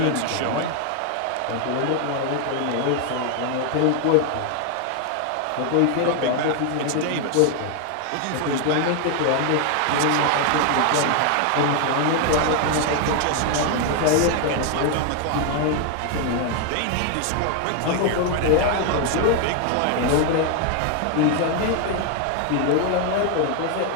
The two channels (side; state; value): both; different; correlation 0.01